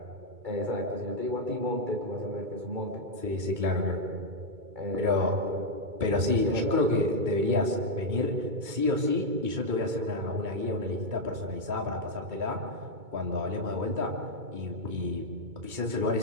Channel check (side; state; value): left; late; 2.2 ms